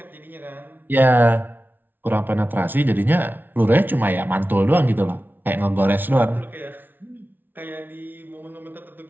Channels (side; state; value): left; late; 0.091 ms